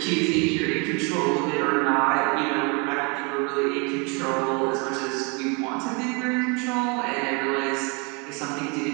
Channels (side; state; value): left; quieter; 31.8 dB